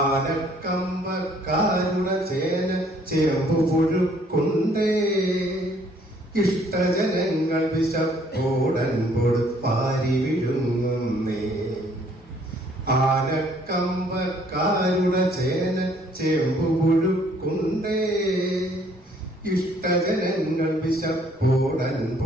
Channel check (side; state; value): both; normal; correlation 0.62